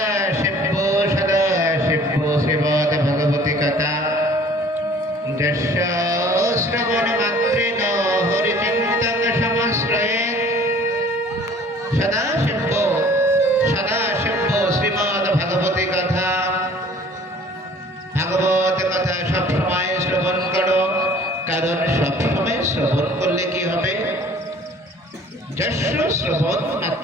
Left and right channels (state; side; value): normal; both; correlation 0.51